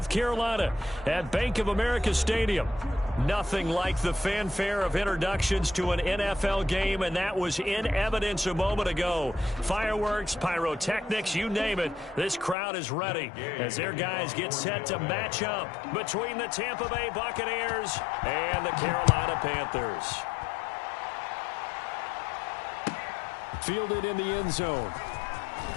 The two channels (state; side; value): drops out; right; at 12.6 s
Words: Carolina at Bank of America Stadium. Nothing like the fanfare of introductions to an NFL game, and that was in evidence a moment ago. Fireworks, pyrotechnics, you name it. This crowd is ready as their guys get set to match up between the Tampa Bay Buccaneers and the Carolina Panthers. Fielded in the end zone.